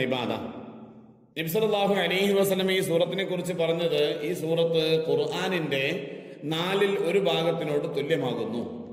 ഇബാദ. നബി സല്ലല്ലാഹു അലൈഹി വസല്ലം ഈ സൂറത്തിനെ കുറിച്ച് പറഞ്ഞത്, ഈ സൂറത്ത് ഖുർആനിന്റെ 4ൽ 1 ഭാഗത്തിനോട് തുല്യമാകുന്നു.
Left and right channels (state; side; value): identical; both; correlation 1.00